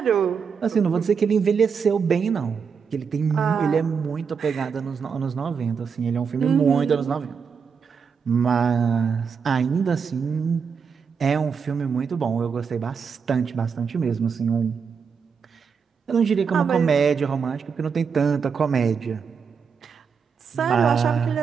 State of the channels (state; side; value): quieter; left; 6.1 dB